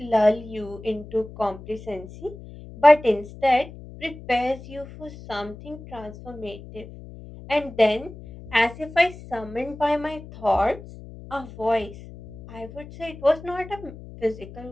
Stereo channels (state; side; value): noise; left; hum, 16 dB below the sound